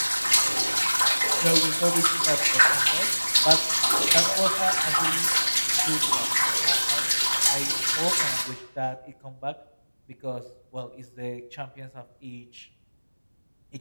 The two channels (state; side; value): inverted; both; correlation -1.00